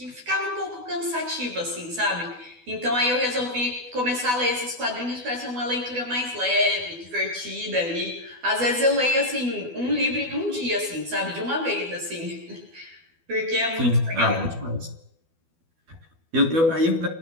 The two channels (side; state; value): left; late; 12 ms